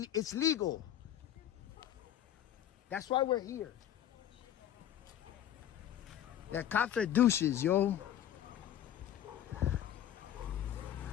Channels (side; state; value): right; quieter; 10.9 dB